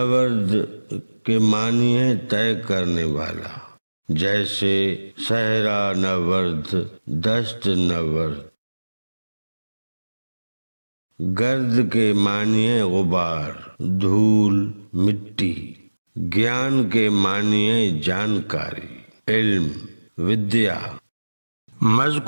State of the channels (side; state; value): both; inverted; correlation -1.00